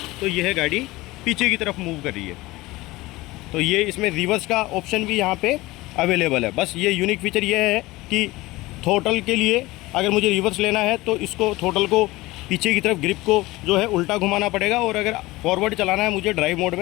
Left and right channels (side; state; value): right; quieter; 19.9 dB